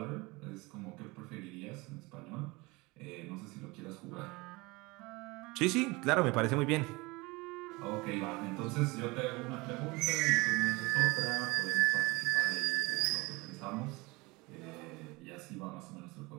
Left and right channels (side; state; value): left; quieter; 24.0 dB